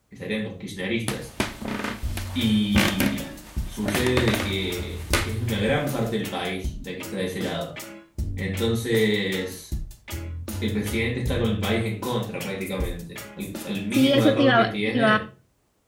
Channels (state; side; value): identical; both; correlation 1.00